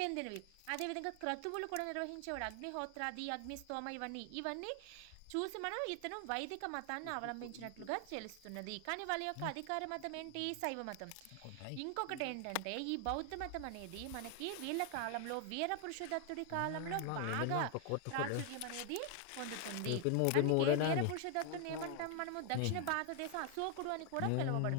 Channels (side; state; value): both; different; correlation 0.00